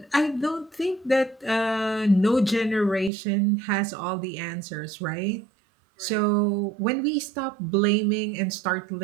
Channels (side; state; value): left; drops out; at 3.1 s